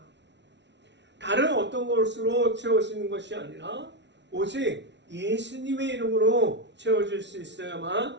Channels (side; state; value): left; late; 0.51 ms